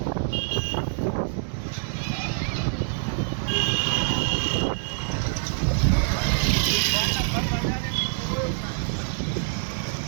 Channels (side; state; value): left; silent; digital silence